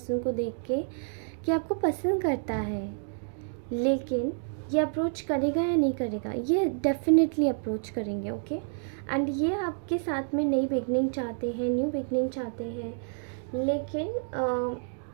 को देख के कि आपको पसंद करता है, लेकिन ये अप्रोच करेगा या नहीं करेगा। ये डेफिनेटली अप्रोच करेंगे, ओके। एंड ये आपके साथ में नई बिगनिंग चाहते हैं, न्यू बिगनिंग चाहते हैं, लेकिन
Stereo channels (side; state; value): left; silent; digital silence